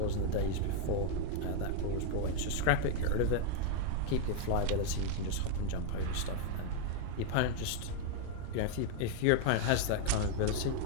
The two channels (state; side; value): different; both; correlation 0.00